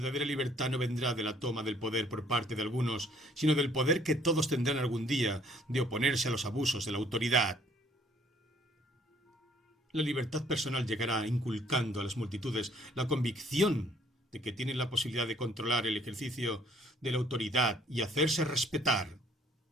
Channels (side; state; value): both; normal; correlation 0.61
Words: libertad no vendrá de la toma del poder por parte de algunos, sino del poder que todos tendrán algún día de oponerse a los abusos de la autoridad. La libertad personal llegará inculcando a las multitudes la convicción de que tienen la posibilidad de controlar el ejercicio de la autoridad y hacerse respetar.